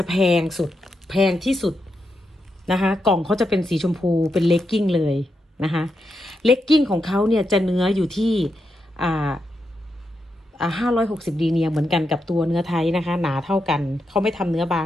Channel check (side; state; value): both; normal; correlation 0.85